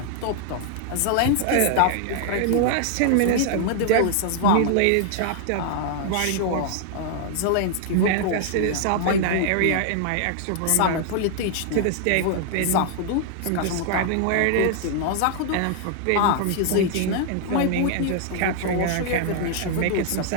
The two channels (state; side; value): different; both; correlation 0.00